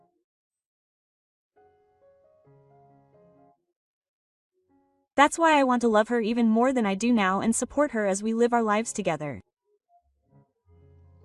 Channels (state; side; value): identical; both; correlation 1.00